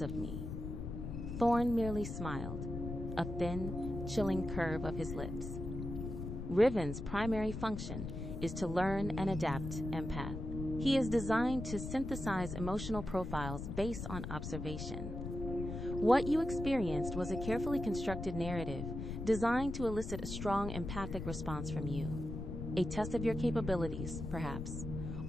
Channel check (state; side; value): noise; left; rumble, 6 dB below the sound